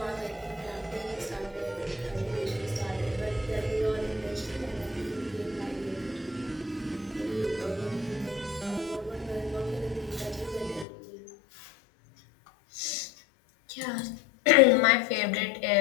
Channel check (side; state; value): right; drops out; at 10.9 s